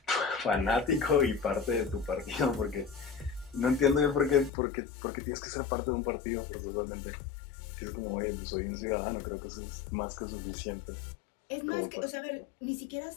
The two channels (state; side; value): drops out; right; at 4.5 s